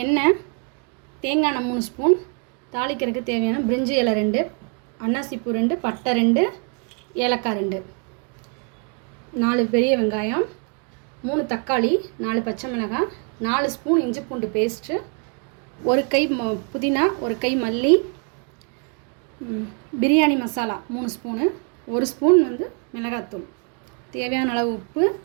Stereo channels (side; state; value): left; quieter; 38.4 dB